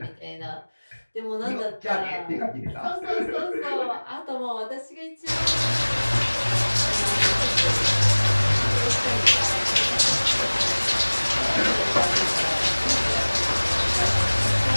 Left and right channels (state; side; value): inverted; both; correlation -1.00